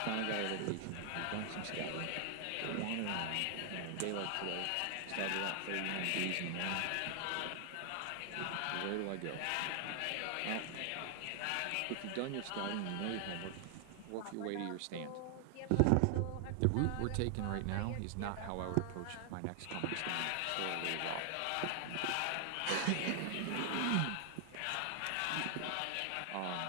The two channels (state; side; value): different; both; correlation 0.00